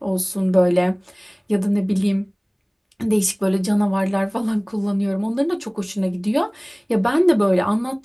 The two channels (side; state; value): both; identical; correlation 1.00